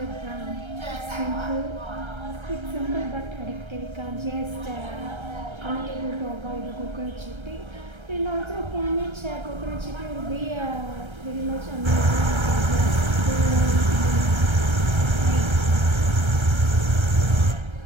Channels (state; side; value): late; left; 1.3 ms